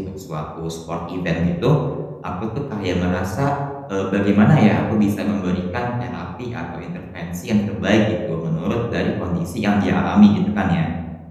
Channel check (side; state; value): both; identical; correlation 1.00